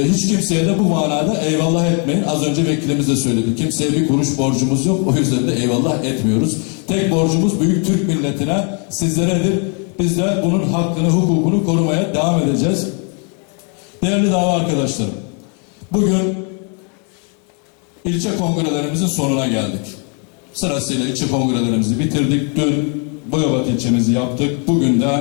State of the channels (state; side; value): quieter; right; 38.5 dB